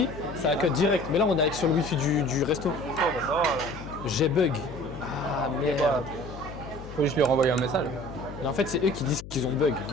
ça a cut direct. Mais là, on est avec sur le wifi du resto. Oh, bah ça va. J'ai bug. Ah merde. Faut juste lui renvoyer un message. Mais en fait, c'est eux qui disent qu'ils ont bug.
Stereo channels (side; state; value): left; noise; hum, 13 dB below the sound